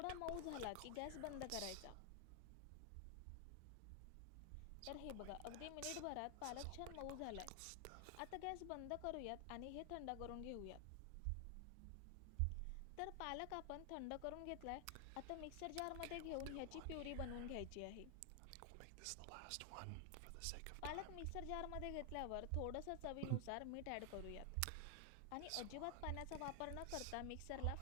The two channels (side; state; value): both; different; correlation 0.00